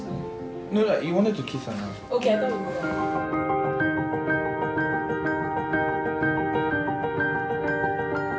No, you wanted to kiss her now. Okay, I thought we were.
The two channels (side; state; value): both; identical; correlation 1.00